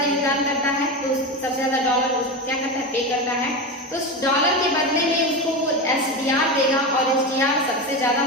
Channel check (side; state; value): both; normal; correlation 0.20